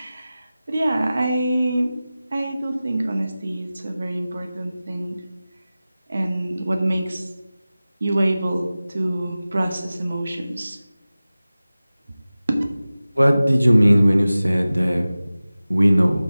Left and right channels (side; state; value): both; inverted; correlation -0.97